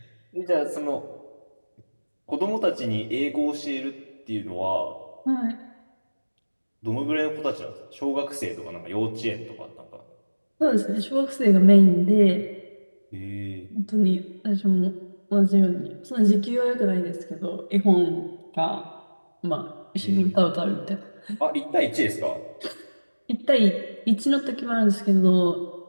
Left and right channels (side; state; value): both; inverted; correlation -1.00